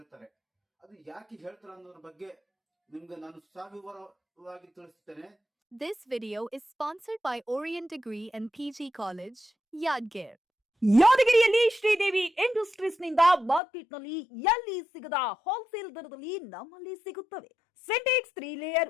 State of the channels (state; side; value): drops out; right; at 13.6 s